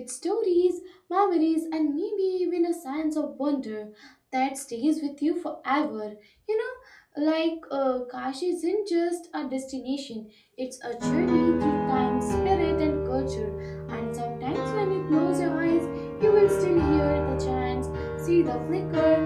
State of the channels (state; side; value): identical; both; correlation 1.00